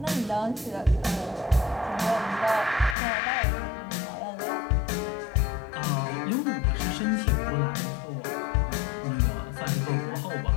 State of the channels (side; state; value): right; drops out; at 3.0 s